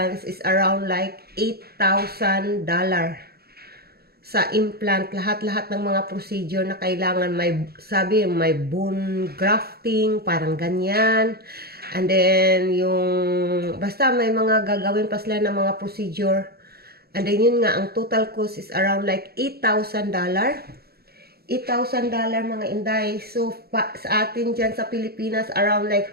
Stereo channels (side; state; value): left; late; 0.46 ms